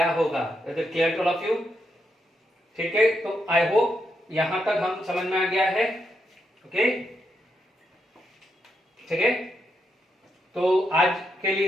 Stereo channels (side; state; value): both; normal; correlation 0.81